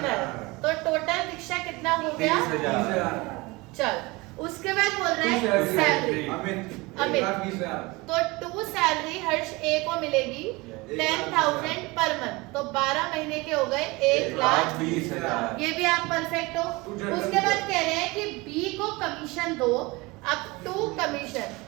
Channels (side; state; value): left; quieter; 23.7 dB